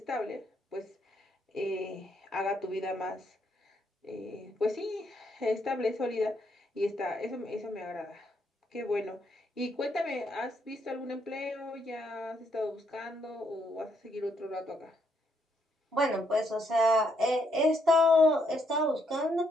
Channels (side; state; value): both; normal; correlation 0.74